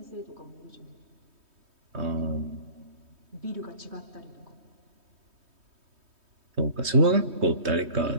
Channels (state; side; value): late; left; 3.2 ms